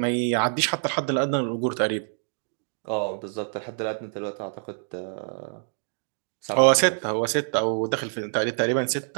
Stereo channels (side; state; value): left; silent; digital silence